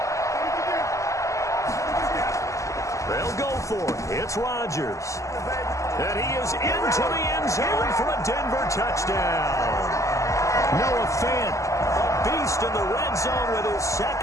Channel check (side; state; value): right; late; 0.15 ms